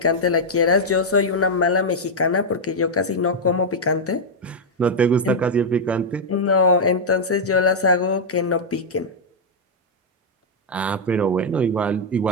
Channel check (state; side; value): normal; both; correlation -0.02